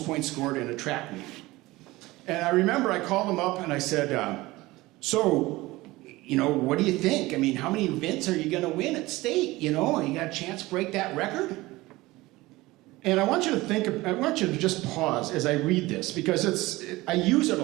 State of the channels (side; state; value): left; quieter; 19.7 dB